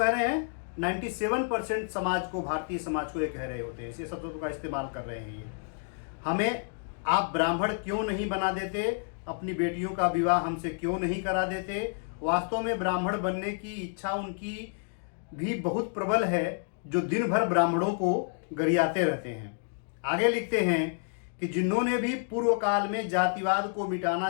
रहे हैं? 97% समाज को, भारतीय समाज को ये कह रहे होते हैं, इसी शब्दों का इस्तेमाल कर रहे हैं ये। हमें आप ब्राह्मण क्यों नहीं बना देते, अपनी बेटियों का विवाह हमसे क्यों नहीं करा देते। वास्तव में ब्राह्मण बनने की इच्छा उनकी भी बहुत प्रबल है, जो दिन भर ब्राह्मणों को गरियाते रहते हैं। आगे लिखते हैं कि जिन्होंने भी पूर्व काल में जातिवाद को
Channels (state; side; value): silent; right; 55 dB below the other